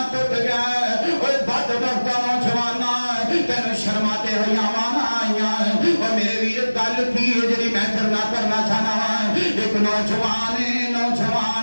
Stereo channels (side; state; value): both; inverted; correlation -1.00